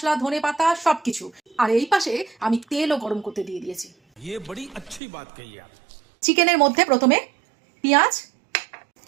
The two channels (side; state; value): left; drops out; at 5.0 s